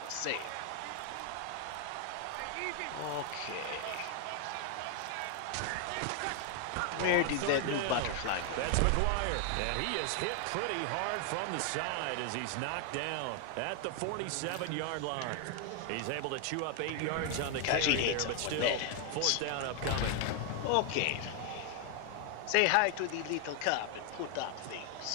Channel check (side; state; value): both; different; correlation 0.00